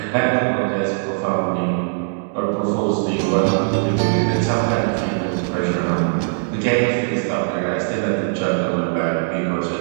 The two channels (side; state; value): left; silent; digital silence